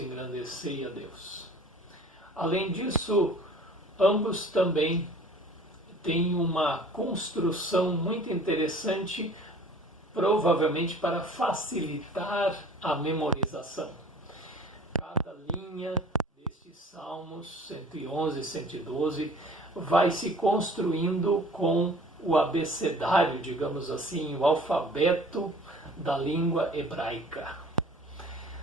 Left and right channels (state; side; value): normal; both; correlation 0.48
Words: a Deus. Além disso, ambos também têm uma construção muito interessante, provavelmente para facilitar a memorização. Cada linha destes Salmos 111 e 112 vai se construindo com o abecedário, digamos assim, o alfabeto da língua hebraica.